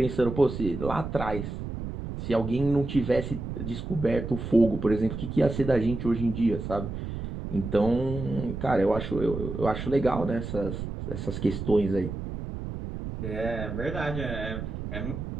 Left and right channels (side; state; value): right; noise; rumble, 6 dB below the sound